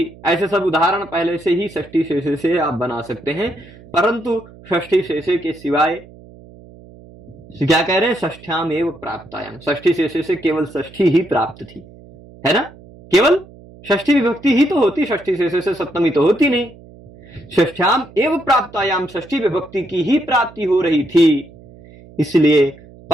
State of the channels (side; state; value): right; noise; hum, 22 dB below the sound